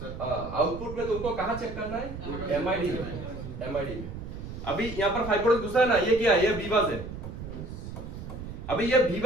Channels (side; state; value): right; noise; rumble, 9 dB below the sound